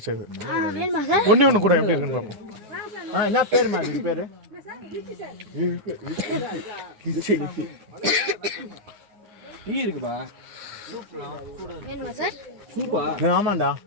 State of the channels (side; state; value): left; late; 9.6 ms